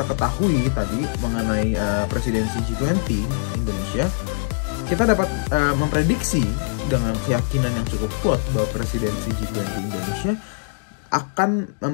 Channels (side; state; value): right; silent; digital silence